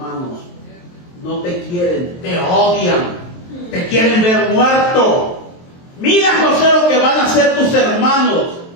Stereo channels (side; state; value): right; late; 23 ms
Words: No te quieren, te odian, te quieren ver muerto. Mira, José, lo que van a hacer tus hermanos.